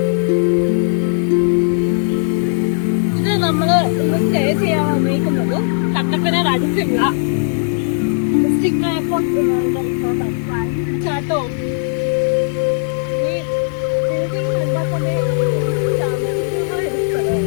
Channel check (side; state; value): right; silent; digital silence